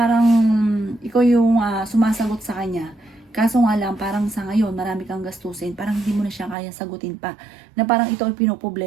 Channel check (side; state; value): left; drops out; at 6.6 s